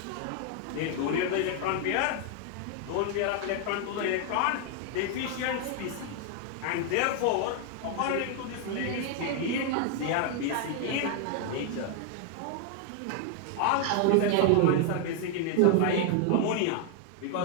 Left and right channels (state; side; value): different; both; correlation 0.00